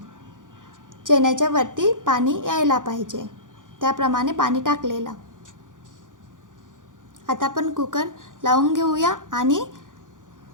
चण्याच्या वरती पाणी यायला पाहिजे, त्याप्रमाणे पाणी टाकलेलं. आता आपण कुकर लावून घेऊया आणि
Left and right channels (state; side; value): late; left; 0.88 ms